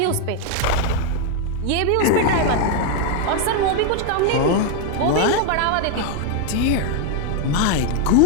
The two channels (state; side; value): different; both; correlation 0.01